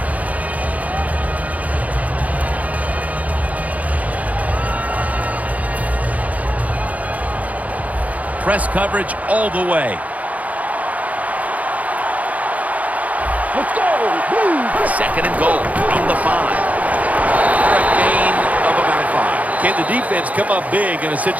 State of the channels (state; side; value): late; left; 0.072 ms